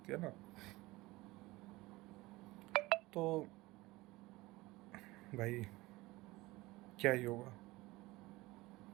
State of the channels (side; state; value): left; quieter; 20.4 dB